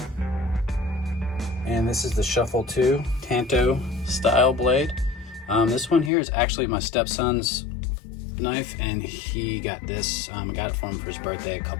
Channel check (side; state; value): right; drops out; at 6.1 s